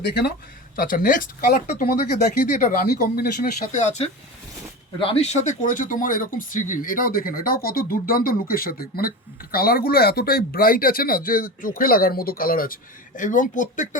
দেখে নাও। আচ্ছা, নেক্সট কালারটা তোমাদেরকে দেখিয়ে দিই, এটা রানী কম্বিনেশনের সাথে আছে। রানীর সাথে করেছে তোমার এরকম সি গ্রিন, এটাও দেখে নাও, এটাও কত দুর্দান্ত লুকের সাথে। মানে কালারগুলো এতটাই ব্রাইট আছে না, যে চোখে লাগার মতো কালার আছে। এবং প্রত্যেকটা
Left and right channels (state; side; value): normal; both; correlation 0.27